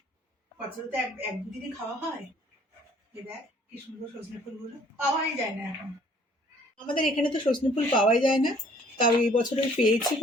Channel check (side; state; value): both; normal; correlation 0.59